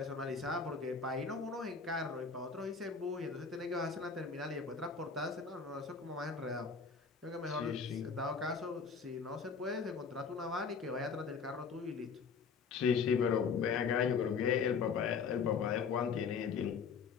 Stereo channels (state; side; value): quieter; right; 5.5 dB